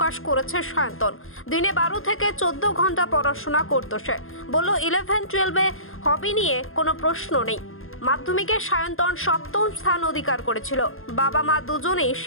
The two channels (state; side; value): late; right; 0.60 ms